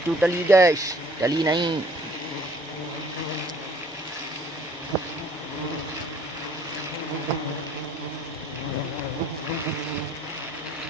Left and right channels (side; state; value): left; noise; hum, 28 dB below the sound